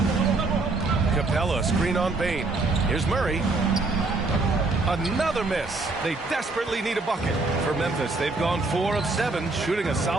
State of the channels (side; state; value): left; quieter; 3.4 dB